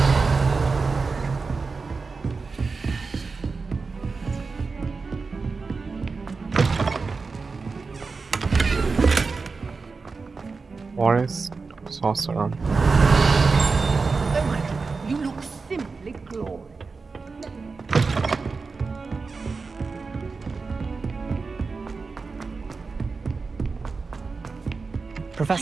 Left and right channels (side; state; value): left; quieter; 4.4 dB